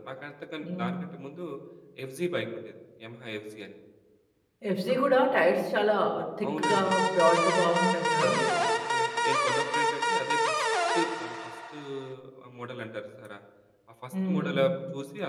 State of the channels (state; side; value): identical; both; correlation 1.00